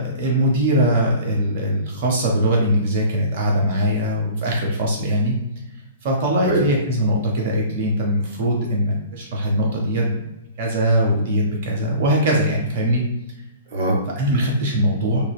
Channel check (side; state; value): both; inverted; correlation -0.45